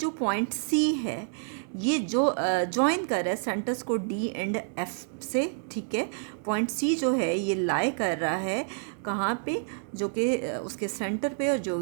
पॉइंट सी है ये जो ज्वाइन कर रहा है सेंटर्स को डी एंड एफ से, ठीक है। पॉइंट सी जो है ये लाई कर रहा है कहाँ पे, जो कि उसके सेंटर पे, और जो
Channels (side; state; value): left; silent; digital silence